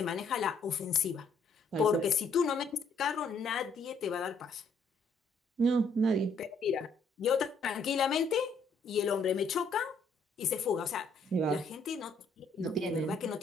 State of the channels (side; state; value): right; quieter; 3.3 dB